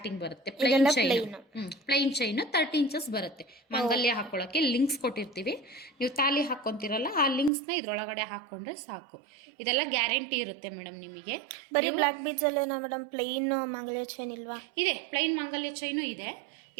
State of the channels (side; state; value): left; drops out; at 7.5 s